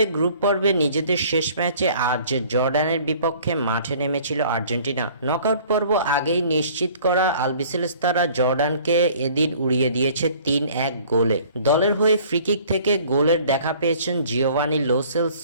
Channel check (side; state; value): both; inverted; correlation -0.52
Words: গ্রুপ পর্বে নিজেদের শেষ ম্যাচে আজ জর্ডানের বিপক্ষে মাঠে নেমেছিল আর্জেন্টিনা। নকআউট পর্ব আগেই নিশ্চিত করা আলবিসেলেস্তারা জর্ডানকে এদিন উড়িয়ে দিয়েছে ৩-১ গোলে। দলের হয়ে ফ্রিকিক থেকে গোলের দেখা পেয়েছেন জিওভানি লো